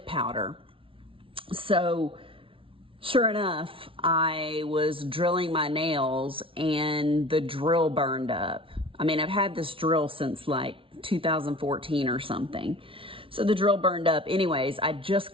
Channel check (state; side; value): late; left; 0.25 ms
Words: powder. So sure enough, I was drilling my nails and the drill burned up. I mean, I've had this drill since like 2014 or something. So the drill burned up. Anyways, I just